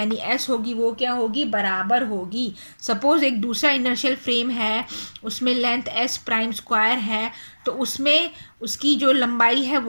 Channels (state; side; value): inverted; both; correlation -1.00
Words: एस होगी, वो क्या होगी, बराबर होगी। सपोज एक दूसरा इनर्शियल फ्रेम है, उसमें लेंथ एस प्राइम स्क्वायर है, तो उसमें उसकी जो लंबाई है